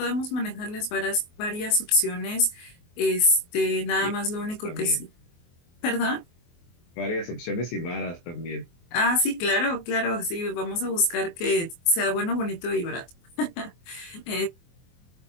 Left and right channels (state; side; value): late; right; 24 ms